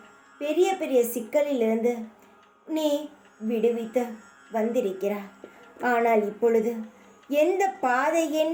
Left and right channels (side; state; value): both; identical; correlation 1.00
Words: பெரிய பெரிய சிக்கலிலிருந்து நீ விடுவித்து வந்திருக்கிறாய். ஆனால் இப்பொழுது எந்த பாதை